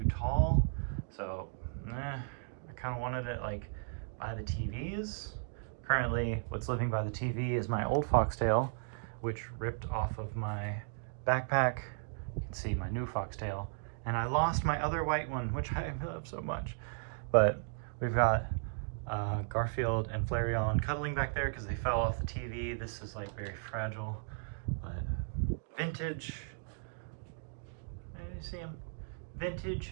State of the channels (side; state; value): left; silent; digital silence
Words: tall. So, I kind of wanted it like by the TVs. Currently, what's living by the TV is my old Foxtail, which ripped off of my backpack. You can see my new Foxtail. And I lost my other white one, which I love so much. But we've got Garfield and Flareon cuddling back there because they fell off the TV. This is like very fragile, but vintage. Maybe you see them.